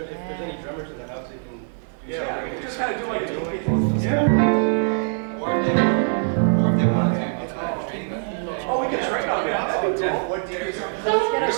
drummers in the house, they can do Yeah, we can just kind of do like a DK. Or if they want to train them. Oh, we can train on that. That'd be cool. What DK? Let's get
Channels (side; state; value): left; silent; digital silence